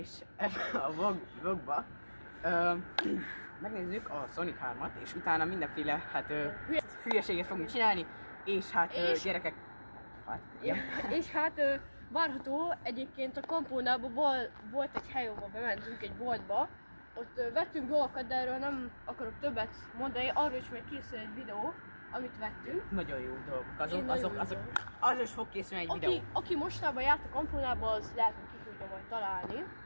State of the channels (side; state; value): both; inverted; correlation -1.00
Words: ebben a vlogba megnézzük a Sonic 3-at, és utána mindenféle hülyeséget fogunk csinálni, és gyerekek... És hát várható, egyébként a Campunában volt egy hely, ahol bementünk egy boltba, ott vettünk dolgokat, de erről nem akarok többet mondani, arról is majd készül egy videó, amit vettünk. Nagyon jó dolgok, azok is fog készülni egy videó. Aki mostában járt a Campunában, az lehet, hogy ki tudja majd találni.